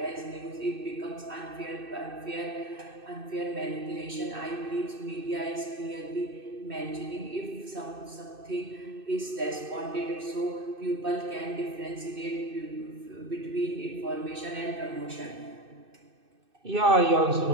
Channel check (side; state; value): left; late; 2.6 ms